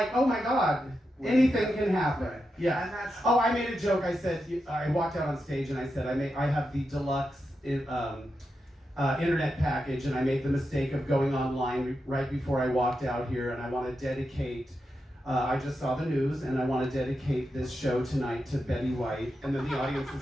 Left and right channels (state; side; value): normal; both; correlation 0.87